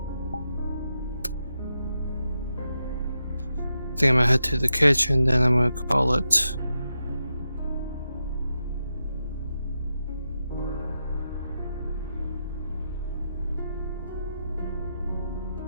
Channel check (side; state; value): both; inverted; correlation -0.87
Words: I think I'm gonna head to the kitchen, then I'm gonna call it.